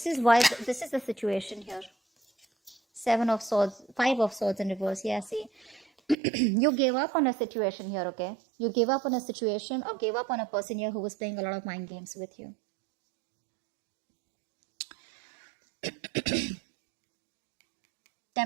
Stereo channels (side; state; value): left; drops out; at 6.2 s